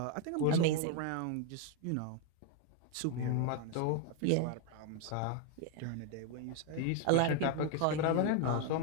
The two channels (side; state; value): both; different; correlation 0.00